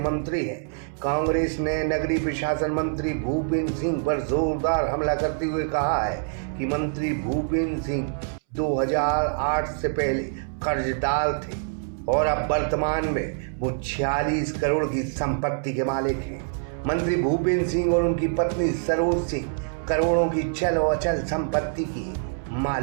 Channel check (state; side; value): silent; left; 62 dB below the other